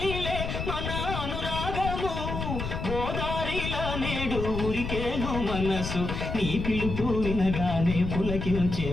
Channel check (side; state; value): left; noise; rumble, 4 dB below the sound